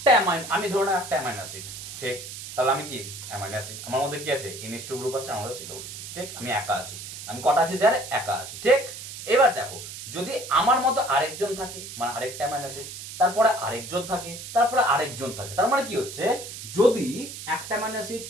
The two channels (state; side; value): noise; right; hiss, 10 dB below the sound